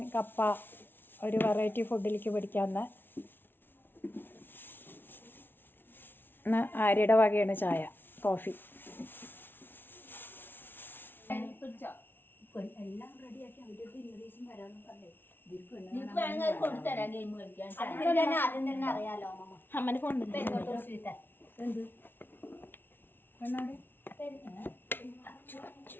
കപ്പ ഒരു വെറൈറ്റി ഫുഡിലേക്ക് പിടിക്കാമെന്ന്. ഇന്ന് ആര്യയുടെ വകയാണ് ചായ, കോഫി. എല്ലാം റെഡിയാക്കി അവരുടെ ഇംഗ്ലീഷും വരാമെന്ന് പറഞ്ഞേ. അറിയാലോ അമ്മന്റെ ഫോൺ എന്ത്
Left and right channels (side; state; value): right; late; 0.10 ms